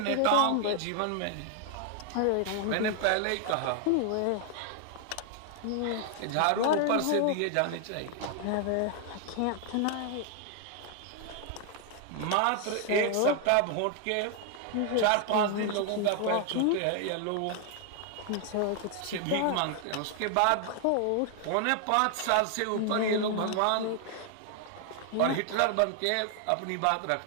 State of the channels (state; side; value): different; both; correlation 0.00